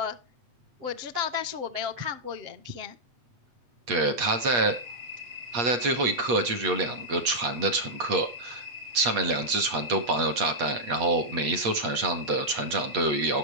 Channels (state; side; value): late; left; 8.4 ms